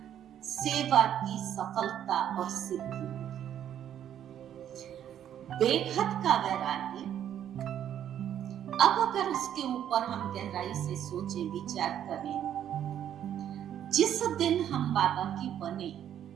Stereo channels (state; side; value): quieter; left; 10.2 dB